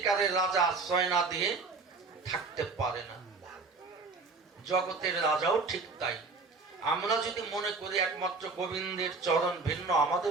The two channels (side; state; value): left; quieter; 4.0 dB